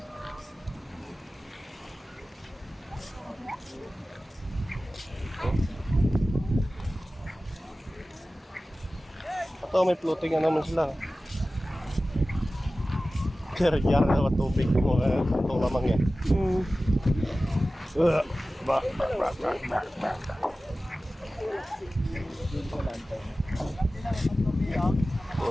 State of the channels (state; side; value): normal; both; correlation 0.96